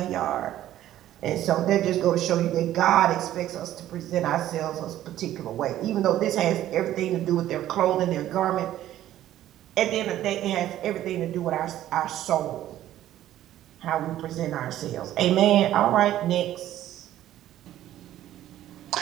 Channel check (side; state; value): left; quieter; 13.0 dB